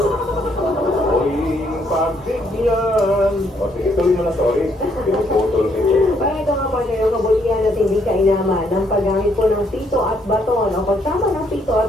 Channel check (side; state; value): both; normal; correlation 0.70